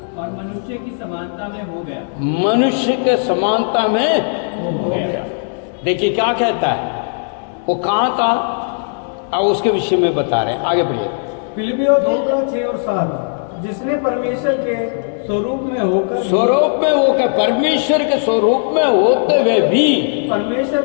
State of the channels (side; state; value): right; silent; digital silence